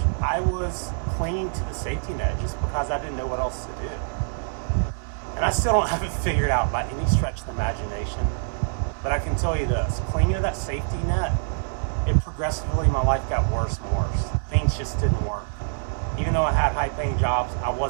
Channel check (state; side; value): silent; left; 62 dB below the other